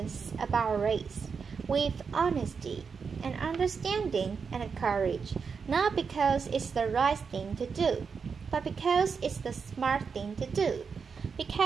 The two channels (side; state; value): left; quieter; 5.7 dB